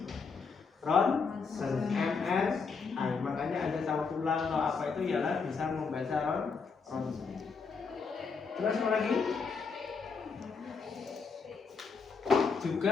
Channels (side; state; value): right; quieter; 5.2 dB